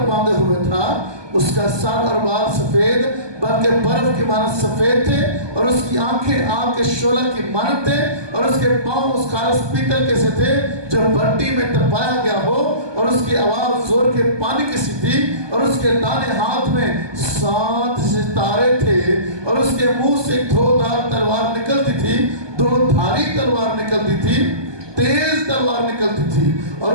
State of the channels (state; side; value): late; left; 1.2 ms